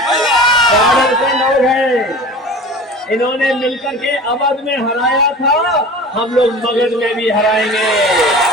बॉर्डर के लोग हैं, इन्होंने मिलकर के अवध में हराया था, हम लोग मगध में भी हराएंगे।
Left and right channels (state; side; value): normal; both; correlation 0.37